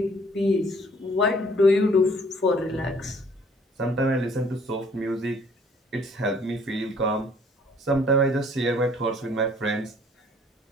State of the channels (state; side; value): normal; both; correlation 0.58